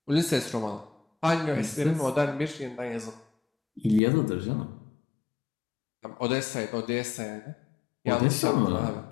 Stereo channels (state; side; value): drops out; right; at 4.0 s